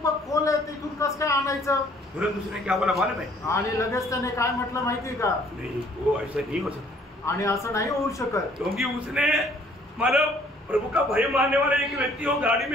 खोल आहे, तिथून कसं काय आणायचं। तुरंत उसने क्या बोला मालूम है? आणि लगेच त्याने काय म्हटलं माहिती का, नहीं वो ऐसा नहीं हो सकता, आणि असं नाही होऊ शकत, क्योंकि उसने मतलब प्रभु का भय मानने वाला एक व्यक्ति हो गाड़ी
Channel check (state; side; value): normal; both; correlation 0.59